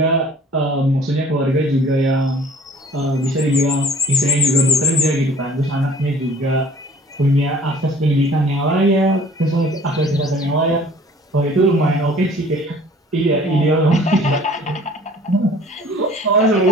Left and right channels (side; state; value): both; normal; correlation 0.51